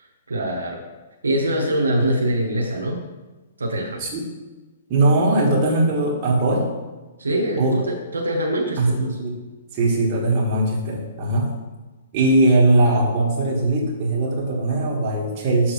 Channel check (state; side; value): inverted; both; correlation -0.63